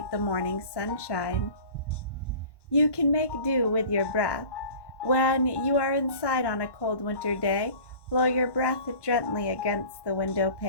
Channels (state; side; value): late; right; 1.1 ms